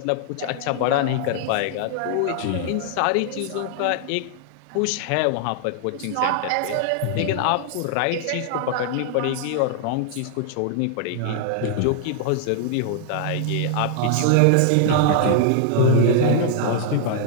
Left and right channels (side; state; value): both; different; correlation -0.01